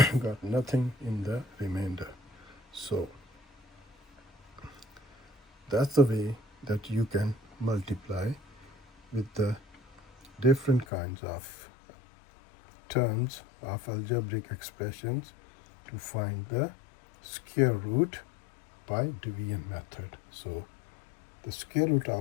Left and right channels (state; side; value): drops out; right; at 10.9 s